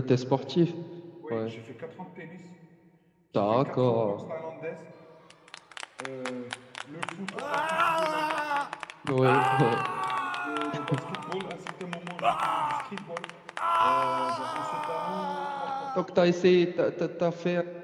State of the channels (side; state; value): both; identical; correlation 1.00